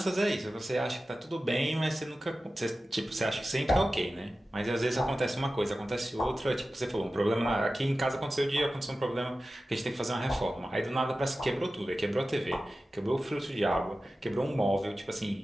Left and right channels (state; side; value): normal; both; correlation 0.95